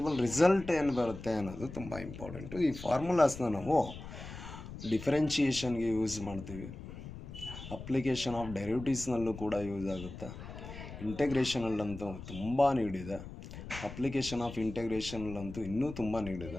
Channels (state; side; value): noise; left; rumble, 12 dB below the sound